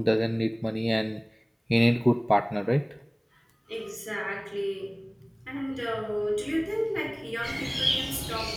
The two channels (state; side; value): identical; both; correlation 1.00